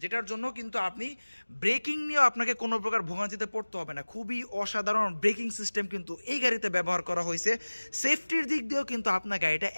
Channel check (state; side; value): inverted; both; correlation -1.00